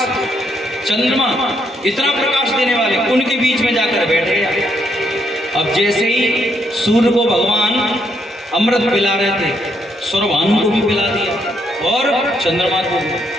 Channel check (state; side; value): normal; both; correlation 0.74